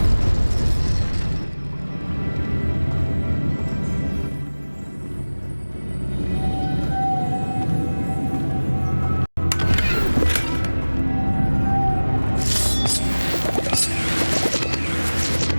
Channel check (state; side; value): inverted; both; correlation -1.00